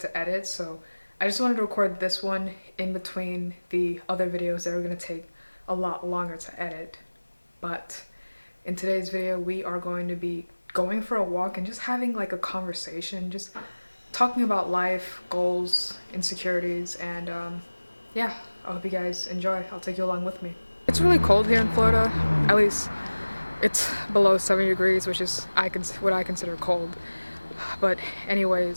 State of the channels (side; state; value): both; inverted; correlation -1.00